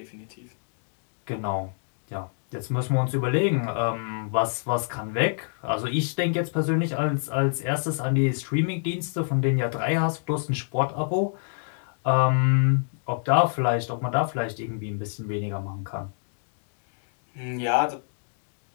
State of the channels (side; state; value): right; silent; digital silence